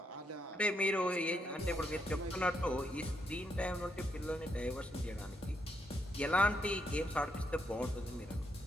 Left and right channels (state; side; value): normal; both; correlation 0.78